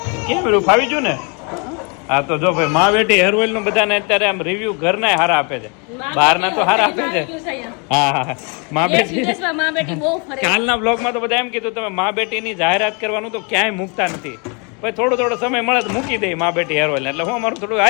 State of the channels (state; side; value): quieter; right; 34.1 dB